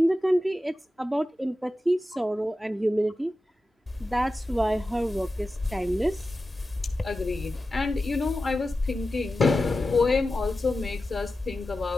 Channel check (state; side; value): normal; both; correlation 0.93